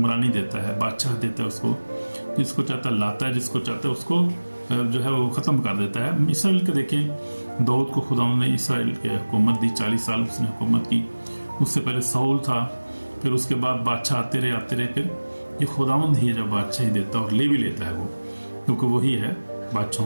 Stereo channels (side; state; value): both; inverted; correlation -1.00